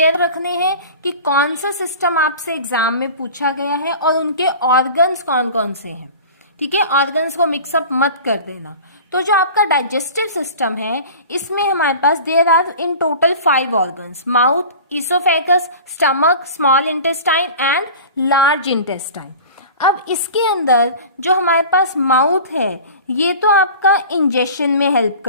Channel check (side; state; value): both; inverted; correlation -0.39